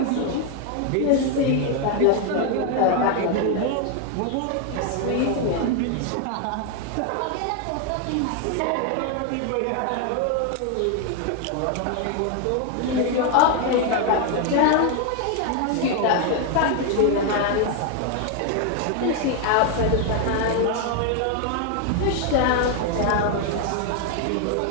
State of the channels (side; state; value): both; different; correlation 0.01